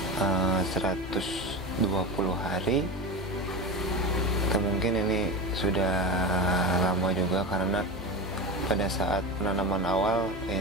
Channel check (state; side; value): noise; left; hum, 13 dB below the sound